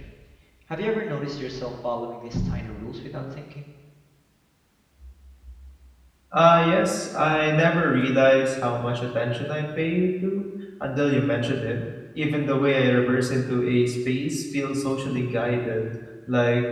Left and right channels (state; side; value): identical; both; correlation 1.00